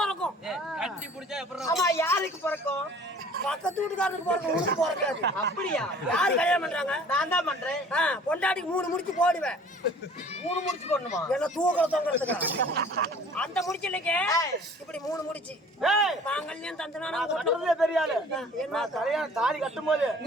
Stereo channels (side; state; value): both; normal; correlation 0.50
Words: ஆமா, யாருக்கு பிறக்கும்? பக்கத்து வீட்டுக்காரருக்கு பிறக்கும், உனக்கு பிறக்காது. அப்படியா? யாரு கல்யாணம் பண்றாங்க? நான் தான் பண்றேன். பொண்டாட்டிக்கு 3 முடிச்சு போடுவேன். 3 முடிச்சு போடணுமா? என்ன தூக்கல தொங்குறதுக்கு அந்த முடிச்சு இல்லைங்க. இப்படி 3 முடிச்சு மாங்கல்யம் தந்தனா பெரிய ஆளு. என்ன கல்யாணம் தாலி கட்டும் போது